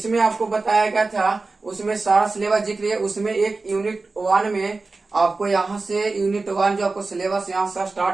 आपको बताया गया था, उसमें सारा सिलेबस जिक्र है। उसमें एक यूनिट 1 में आपको यहाँ से यूनिट 1 जो आपको सिलेबस यहाँ से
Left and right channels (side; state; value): left; quieter; 3.7 dB